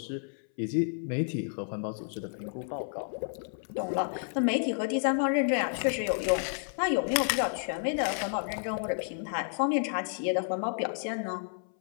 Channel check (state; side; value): silent; right; 57 dB below the other